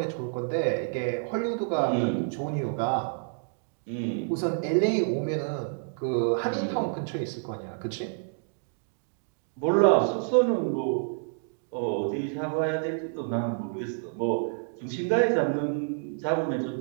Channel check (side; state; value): left; silent; digital silence